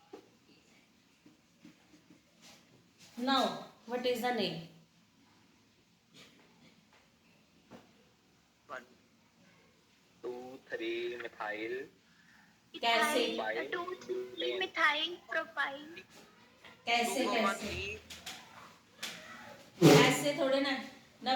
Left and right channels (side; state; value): both; identical; correlation 1.00